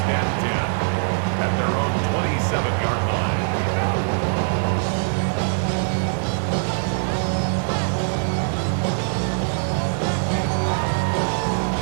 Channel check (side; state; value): left; silent; digital silence